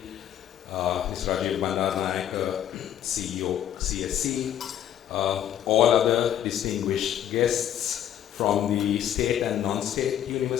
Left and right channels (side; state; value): right; quieter; 10.6 dB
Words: Mr. Rajiv Bandaranaike, CEO, CSE. All other distinguished guests from the state and non-state